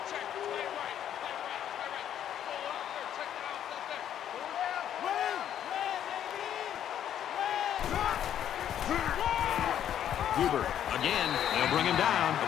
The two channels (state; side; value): quieter; right; 10.2 dB